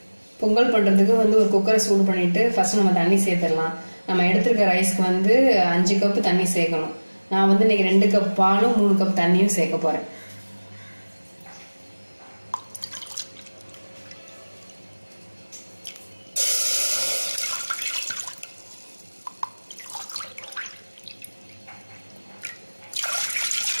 பொங்கல் பண்ணுறதுக்கு ஒரு குக்கரை சூடு பண்ணிவிட்டு ஃபஸ்ட்டு நம்ம தண்ணி சேர்த்துடலாம். நம்ம எடுத்துருக்க ரைஸ்க்கு 5 கப்பு தண்ணி சேர்க்கணும். நான் இன்னைக்கு 2 கப் பாலும் 3 கப் தண்ணியும் சேர்க்க போகிறேன்.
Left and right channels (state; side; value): inverted; both; correlation -1.00